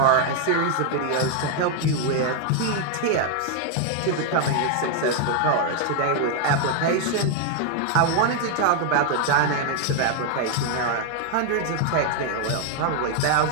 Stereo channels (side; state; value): both; different; correlation 0.00